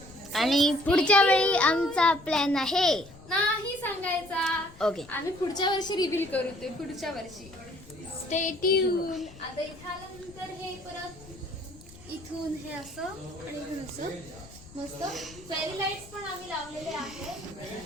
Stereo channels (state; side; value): noise; left; rumble, 21 dB below the sound